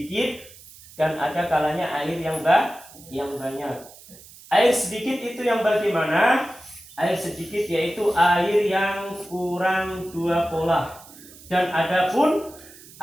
dan ada kalanya air yang banyak. Air sedikit itu yang bagaimana? Air sedikit yaitu air yang kurang 2 polah. Dan adapun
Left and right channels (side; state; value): right; noise; hiss, 20 dB below the sound